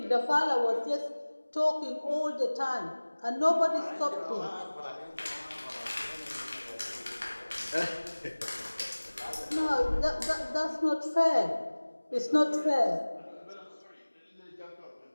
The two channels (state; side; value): inverted; both; correlation -1.00